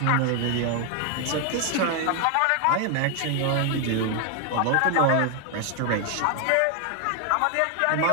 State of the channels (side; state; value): both; different; correlation 0.00